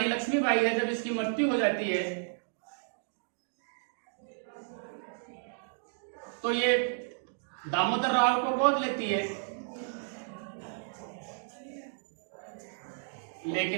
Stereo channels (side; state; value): left; silent; digital silence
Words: लक्ष्मीबाई है, जब इसकी मृत्यु हो जाती है तो ये दामोदर राव को गोद लेती है।